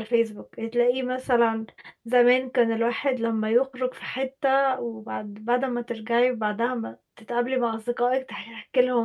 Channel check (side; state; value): both; identical; correlation 1.00